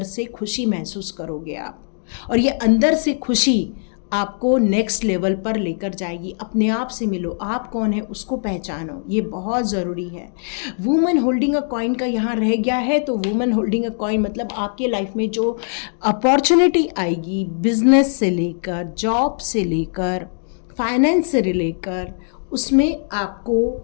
से खुशी महसूस करोगे आप, और ये अंदर से खुशी आपको नेक्स्ट लेवल पर लेकर जाएगी। अपने आप से मिलो, आप कौन है उसको पहचानो, ये बहुत ज़रूरी है। वुमन होल्डिंग अ कॉइन का यहाँ रह गया है, तो वुमन होल्डिंग अ कॉइन मतलब आपके लाइफ में जो अपॉर्चुनिटी आएगी, बिजनेस से लेकर, जॉब से लेकर, फाइनेंस से लेकर, उसमें आपको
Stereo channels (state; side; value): silent; right; 65 dB below the other